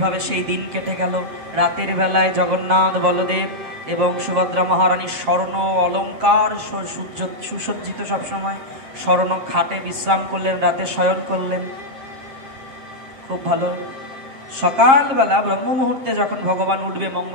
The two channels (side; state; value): left; late; 7.5 ms